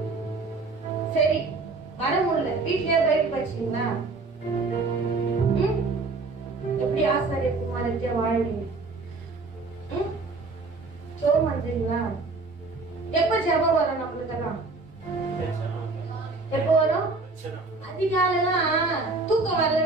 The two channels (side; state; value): left; quieter; 3.7 dB